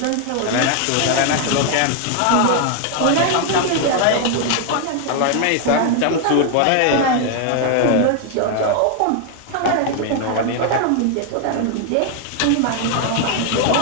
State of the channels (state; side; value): different; both; correlation 0.00